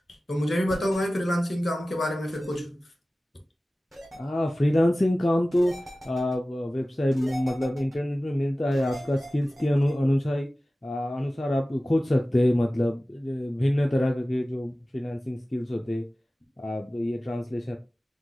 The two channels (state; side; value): normal; both; correlation 0.97